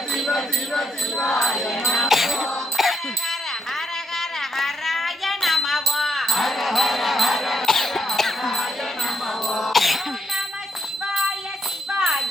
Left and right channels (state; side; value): normal; both; correlation 0.76